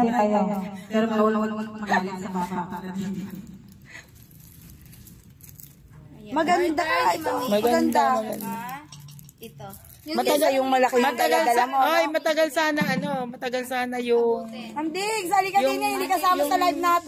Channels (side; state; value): both; identical; correlation 1.00